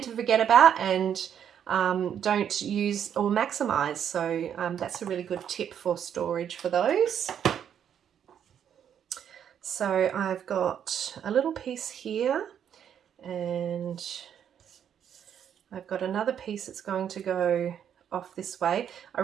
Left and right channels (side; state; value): left; quieter; 8.9 dB